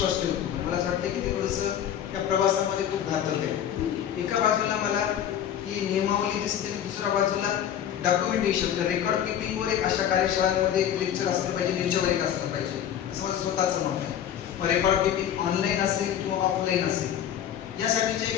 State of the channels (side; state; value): right; quieter; 10.0 dB